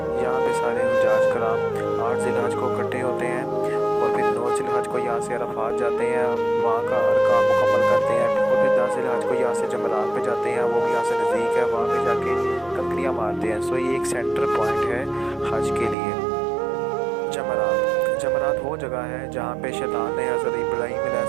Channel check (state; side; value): drops out; left; at 16.0 s